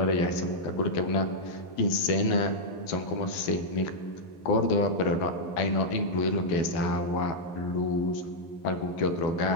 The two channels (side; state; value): right; late; 12 ms